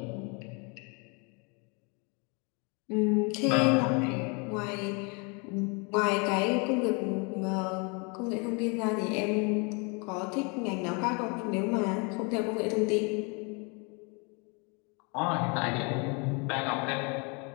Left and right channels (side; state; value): right; quieter; 32.6 dB